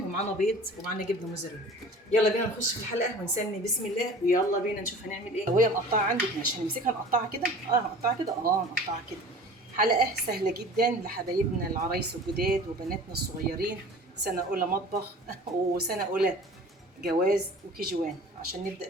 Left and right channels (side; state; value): both; normal; correlation 0.43